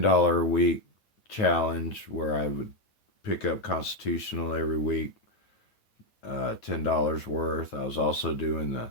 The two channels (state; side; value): late; right; 9.4 ms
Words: a week challenge where I would pick up Constitutional every week, $10 worth. I was also doing the